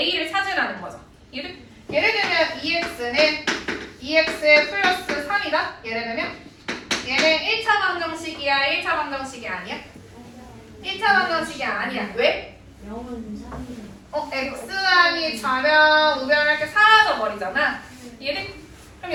찾으라는 거죠. 예를 들면 EX는 2X 플러스 3이다. 예를 들면 얘는 1차 방정식이야, 1차 방정식이 아니야? 1차 방정식이 아니야. 왜? X항이 좌변, 우변 이렇게 사라져 버리잖아. 그럼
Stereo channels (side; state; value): both; identical; correlation 1.00